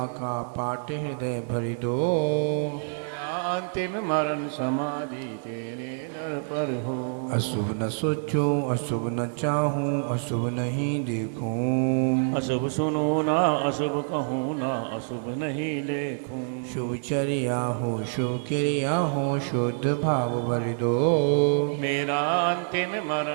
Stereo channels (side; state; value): left; silent; 60 dB below the other